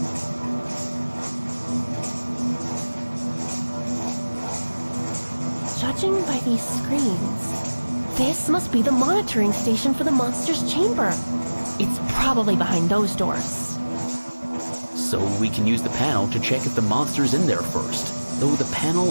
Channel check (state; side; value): inverted; both; correlation -1.00